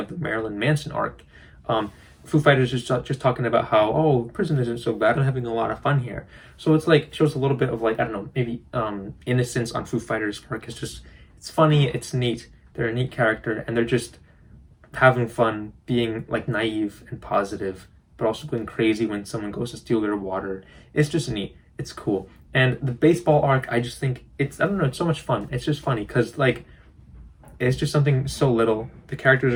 the Marilyn Manson arc, Foo Fighters is just talking about how, oh, prison isn't so bad, I'm having a lot of fun here. So it's like, shows a little bit of like, I don't know, maybe innocence on Foo Fighters' part. It's funny, it's neat, they're a neat character, and they're just having fun, being like naive and positive, but also going crazy when someone goes to steal their water. It's just neat, it's cool. And the baseball arc, I just think it's so much fun. It's just funny because like, it's just something so little. The characters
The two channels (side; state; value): both; identical; correlation 1.00